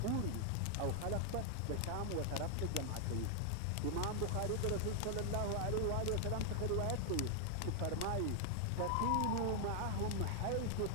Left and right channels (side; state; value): both; different; correlation 0.00